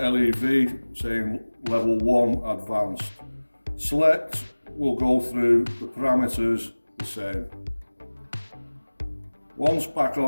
saying level 1 advanced. Select will go through the parameters the same. Once back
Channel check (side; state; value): both; inverted; correlation -1.00